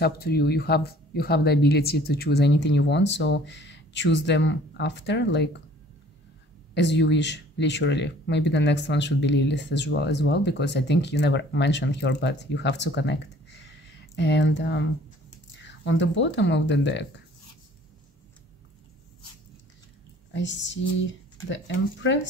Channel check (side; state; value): both; normal; correlation 0.53